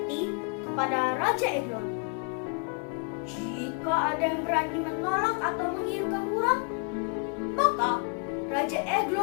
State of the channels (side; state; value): right; quieter; 35.8 dB